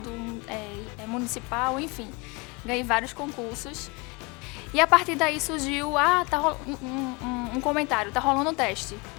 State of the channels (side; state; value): right; quieter; 27.6 dB